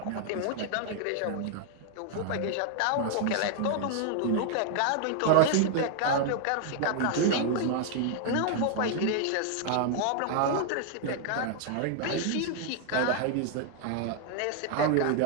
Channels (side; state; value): both; different; correlation 0.00